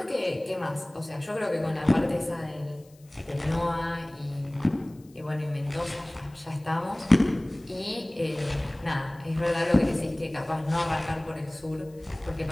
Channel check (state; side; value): noise; left; hiss, 29 dB below the sound